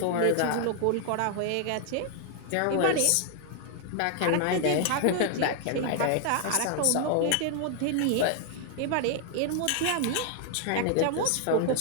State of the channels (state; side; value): different; both; correlation 0.00